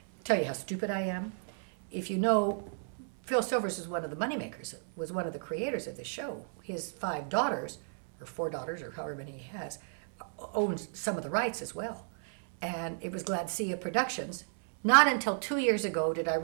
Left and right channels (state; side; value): silent; left; 56 dB below the other